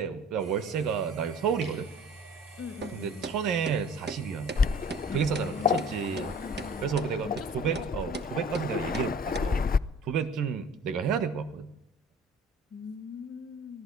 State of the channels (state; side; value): normal; both; correlation 0.47